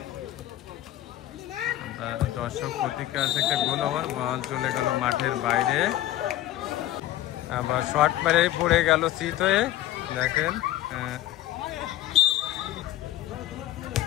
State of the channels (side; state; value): right; quieter; 14.2 dB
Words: দর্শক প্রতিক্রিয়া আছে, একটা গোল ওভার, বল চলে গেল মাঠের বাইরে। আবার শট মেরে পড়ে গেল চিত হয়ে। দেখেন